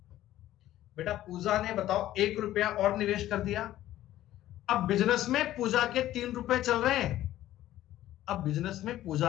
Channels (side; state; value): right; quieter; 13.9 dB